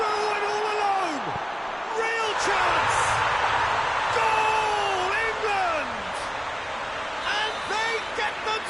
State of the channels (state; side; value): identical; both; correlation 1.00